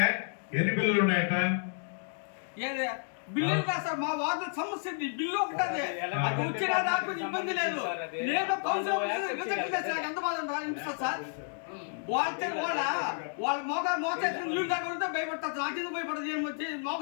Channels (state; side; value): silent; right; 57 dB below the other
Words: ఎన్ని బిల్లులు ఉన్నాయట? ఏది బిల్లులు కాదు సార్. మా వార్డు సమస్య బిల్లు ఒకటి. అది వచ్చినా నాకు ఇబ్బంది లేదు. నేను కౌన్సిలర్ రిజెక్ట్ చేసి నాకు ఎంత బాధ అనిపిస్తుంది సార్. వాళ్ళ మోచేసిన నీళ్ళు దగ్గర ఉంటే భయపడతారు. నాకెందుకు భయపడదు?